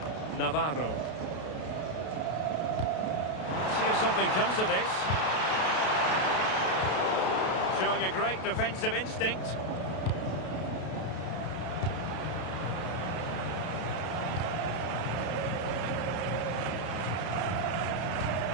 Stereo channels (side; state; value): right; late; 32 ms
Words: Navarro. Let's see if something comes of this. Showing a great defensive instinct.